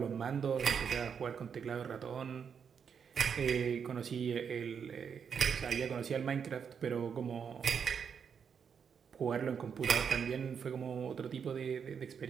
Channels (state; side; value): quieter; left; 7.0 dB